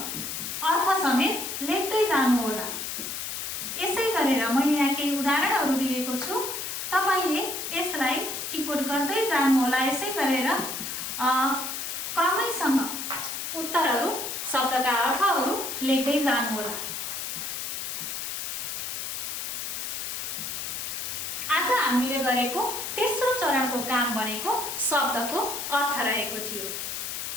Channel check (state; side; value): noise; left; hiss, 4 dB below the sound